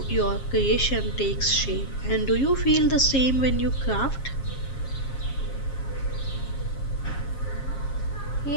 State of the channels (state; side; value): late; right; 7.4 ms